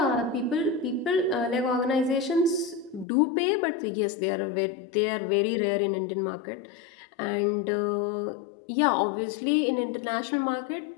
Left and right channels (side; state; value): right; drops out; at 3.1 s